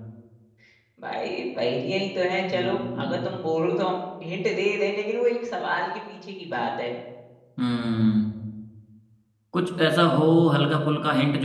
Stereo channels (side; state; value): both; identical; correlation 1.00